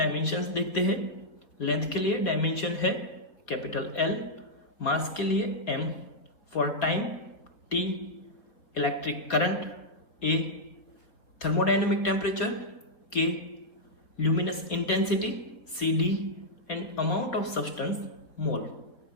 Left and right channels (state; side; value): late; right; 4.4 ms